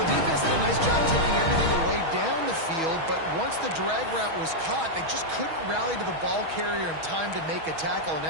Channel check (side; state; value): left; late; 6.2 ms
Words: defense did a nice job taking everything away down the field, but once the drag route was caught, they just couldn't rally to the ball carrier in time to make a tackle, and